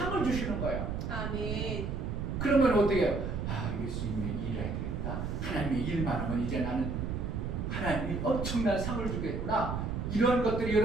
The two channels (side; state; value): right; noise; rumble, 3 dB below the sound